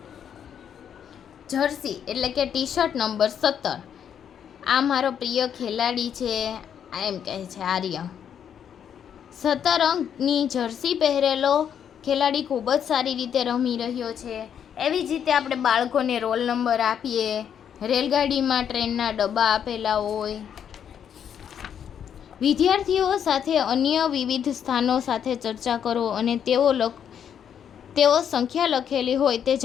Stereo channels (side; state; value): right; quieter; 8.6 dB